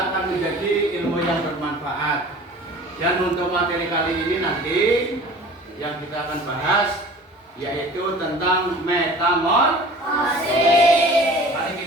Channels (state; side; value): normal; both; correlation 0.44